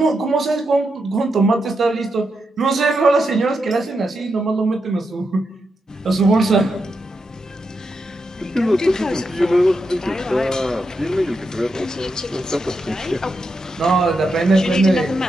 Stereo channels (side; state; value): both; normal; correlation 0.85